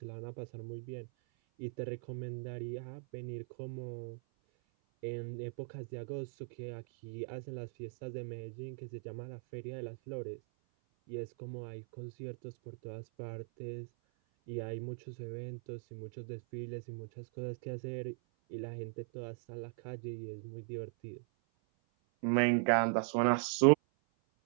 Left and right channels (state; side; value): silent; left; 51 dB below the other